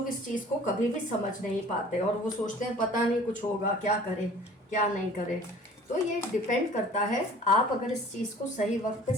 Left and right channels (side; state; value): both; normal; correlation 0.48